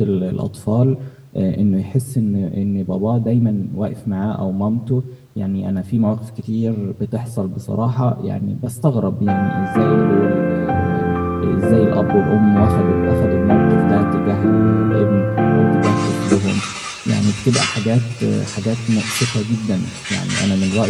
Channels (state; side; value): identical; both; correlation 1.00